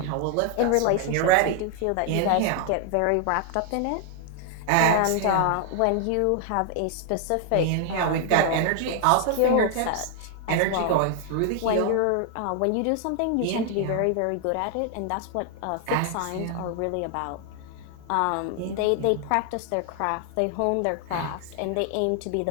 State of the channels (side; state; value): both; different; correlation 0.00